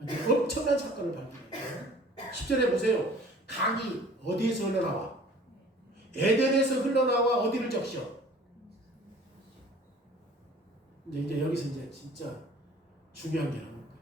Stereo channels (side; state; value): both; normal; correlation 0.49